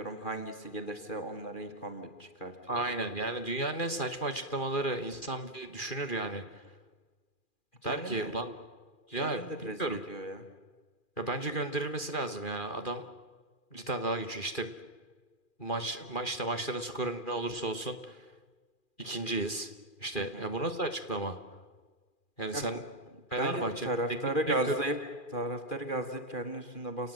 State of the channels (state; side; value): late; right; 2.4 ms